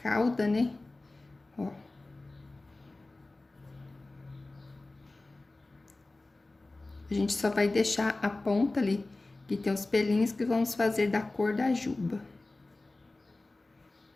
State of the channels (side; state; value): right; quieter; 3.0 dB